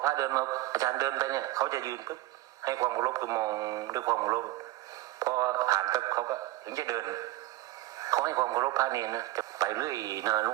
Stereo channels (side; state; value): left; quieter; 17.0 dB